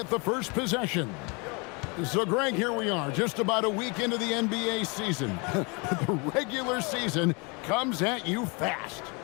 the first possession. So, Greg, here we are, just about a week into the NBA season. The regular season comes at you fast.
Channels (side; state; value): right; quieter; 30.7 dB